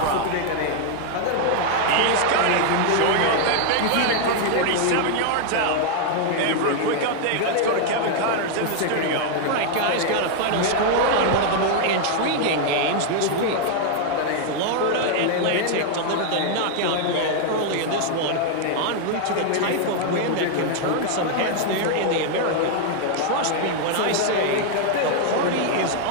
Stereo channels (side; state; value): both; different; correlation 0.00